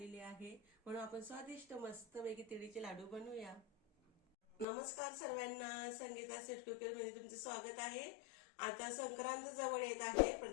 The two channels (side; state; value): right; drops out; at 4.7 s